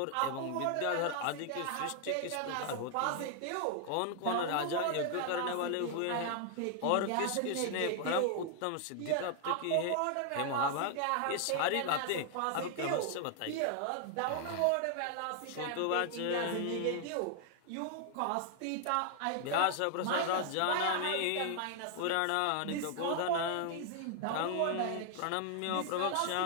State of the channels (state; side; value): different; both; correlation 0.00